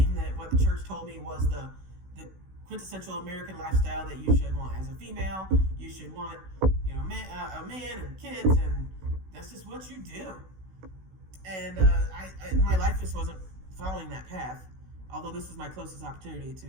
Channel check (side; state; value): left; late; 16 ms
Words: that what the church told me was the quintessential American lifestyle that you should want. As a female, you should want, a man and kids, and that's just what you do. And my life just wasn't following that path, although this was my closest opportunity